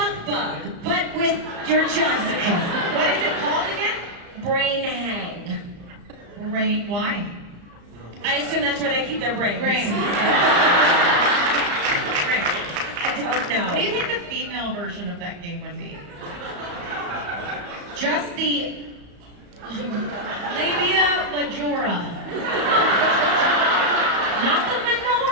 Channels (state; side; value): late; left; 35 ms